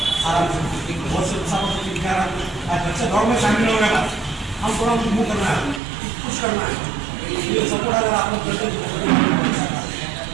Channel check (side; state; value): left; drops out; at 5.8 s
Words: आराम से बहुत से बच्चे दौड़ में शामिल हो गए, हम थोड़ा मूव करना है, कुछ करना है, ये सपोर्ट अगर आप लोग करते हैं